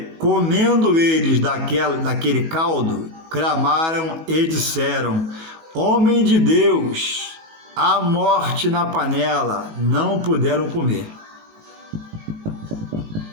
comendo eles daquele caldo, clamaram e disseram: homem de Deus, há morte na panela. Não puderam comer.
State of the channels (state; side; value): late; left; 18 ms